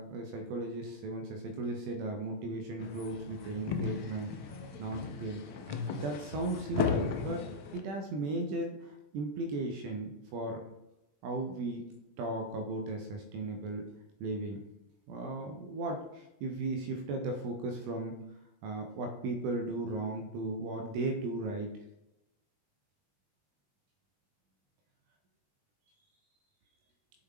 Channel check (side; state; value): left; late; 20 ms